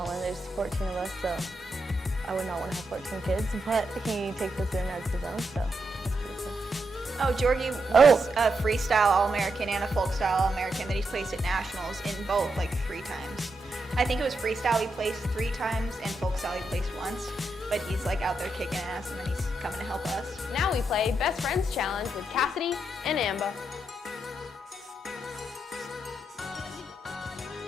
in. There's 14 of us, so I would not want to have 14 kids, but he takes us in as his own, so that's pretty cool. Oh, Jorgie was a freestyle All-American and a folk style All-American that he's placed at nationals in both like 3 times. I think it was freestyle he placed 3 times and folk style he placed once. but he's like out there kicking ass, and then he's coming to help us. Now we play Best Friends Challenge with Cassidy and Amber.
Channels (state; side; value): normal; both; correlation 0.83